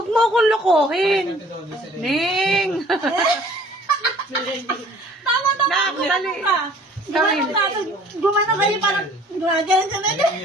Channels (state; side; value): normal; both; correlation 0.53